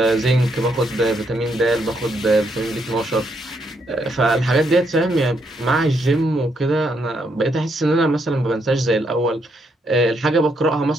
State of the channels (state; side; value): normal; both; correlation 0.76